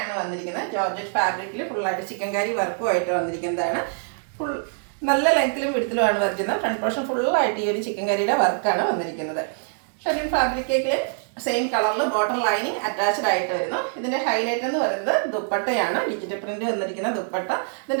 വന്നിരിക്കുന്നത്. ജോർജറ്റ് ഫാബ്രിക്കിൽ ഫുള്ളായിട്ട് ചിക്കൻ കറി വർക്കുമായിട്ട് വന്നിരിക്കുന്നതാണ്. ഫുൾ നല്ല ലെങ്ത്തിലും വിടുത്തിലുമാണ് വരയ്ക്കുന്നത്. ഫ്രണ്ട് പോർഷൻ ഫുള്ളായിട്ട് ഈ ഒരു ചിക്കൻ കറിയുടെ വർക്കാണ് വന്നിരിക്കുന്നത്. ഷെറിൻ ഫാബ്രിക്കിൽ സെയിം കളറിൽ ബോട്ടം ലൈനിങ് അറ്റാച്ച്ഡ് ആയിട്ട് വരുന്നു. ഇതിൻ്റെ ഹൈലൈറ്റ് എന്ന് പറയുന്നത് ദുപ്പട്ടയാണ്. ഡിജിറ്റൽ പ്രിന്റ് വന്നിരിക്കുന്ന ദുപ്പട്ട.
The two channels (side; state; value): left; silent; 62 dB below the other